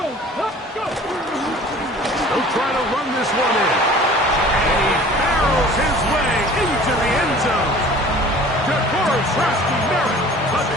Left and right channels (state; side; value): normal; both; correlation 0.46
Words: Let's go. They'll try to run this one in. And he barrels his way into the end zone. DeForest Merritt,